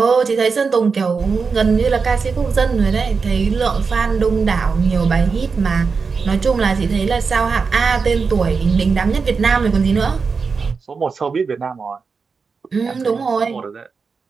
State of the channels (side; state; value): left; quieter; 5.0 dB